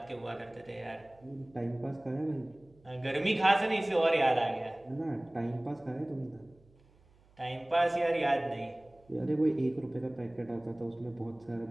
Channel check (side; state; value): right; noise; hum, 29 dB below the sound